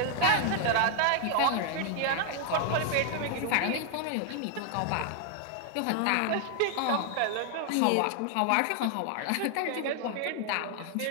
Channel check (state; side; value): different; both; correlation 0.00